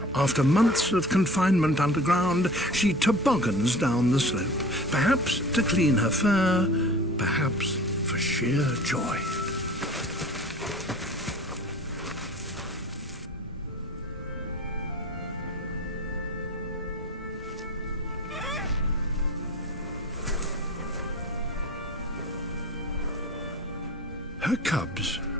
After months of confinement underground, she toboggans down the slope, perhaps to clean her fur, perhaps for sheer joy. Her cubs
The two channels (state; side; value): normal; both; correlation 0.40